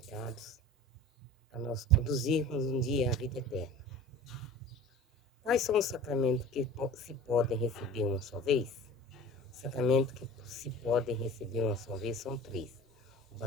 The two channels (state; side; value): normal; both; correlation 0.39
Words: a nós conduzirmos um dia à vida eterna. Quais são os sacramentos que se podem receber uma só vez? Os sacramentos que se podem receber uma só vez são 3. O